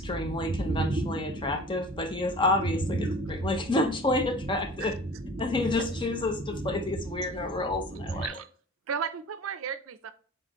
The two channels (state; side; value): normal; both; correlation 0.42